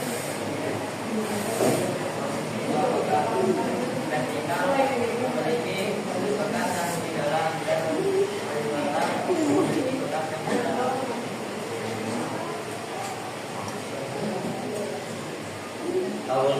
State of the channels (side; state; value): both; identical; correlation 1.00